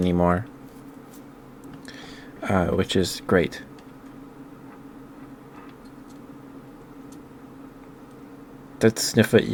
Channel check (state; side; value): identical; both; correlation 1.00